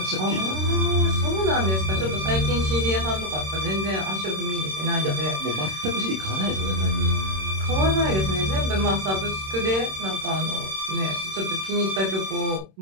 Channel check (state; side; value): late; left; 26 ms